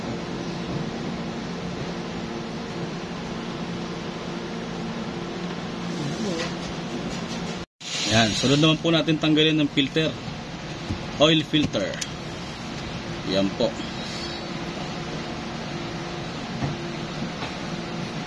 Ayan, sunod naman po natin tanggalin ng filter. Oil filter. Yan po.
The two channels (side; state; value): both; identical; correlation 1.00